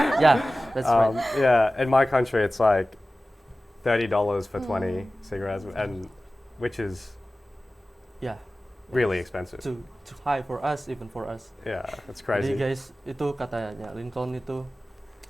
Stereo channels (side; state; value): both; normal; correlation 0.96